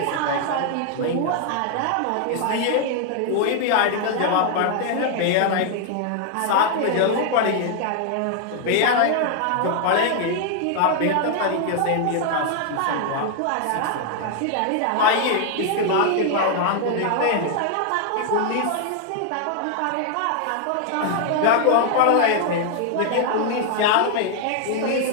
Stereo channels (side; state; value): both; different; correlation 0.00